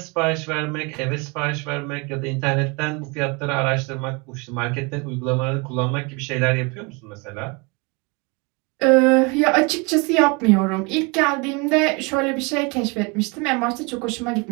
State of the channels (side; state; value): left; quieter; 28.5 dB